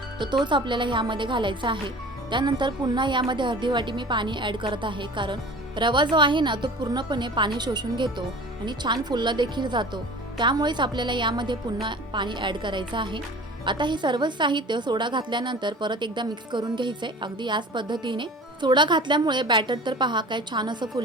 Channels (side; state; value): both; normal; correlation 0.41